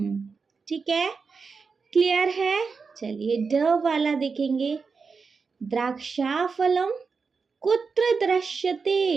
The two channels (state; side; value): quieter; left; 5.0 dB